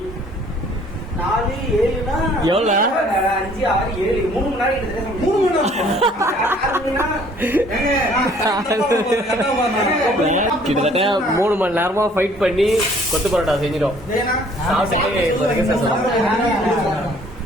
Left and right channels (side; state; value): both; normal; correlation 0.57